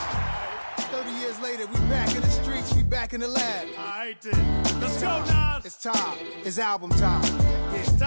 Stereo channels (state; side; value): inverted; both; correlation -1.00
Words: 30 years later, we back in the streets, we back in the lab. All right, then. Let's go, Nas. It's time. It's album time. Yeah, it's